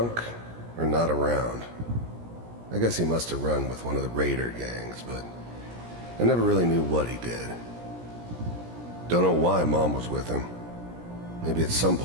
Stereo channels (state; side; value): late; left; 17 ms